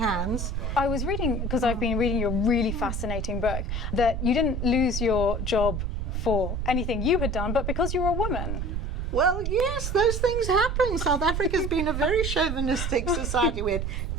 I was reading, because I've been reading your really fascinating book, that you didn't lose your job for anything you had done, but because you were a woman. Well, yes, those things happen. South Africa's been a very chauvinistic society. We had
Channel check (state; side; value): noise; right; rumble, 2 dB below the sound